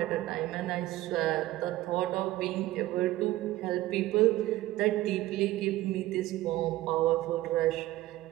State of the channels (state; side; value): quieter; left; 16.3 dB